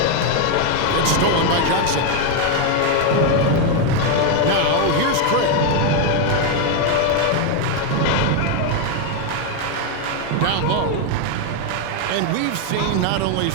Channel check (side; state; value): both; different; correlation 0.01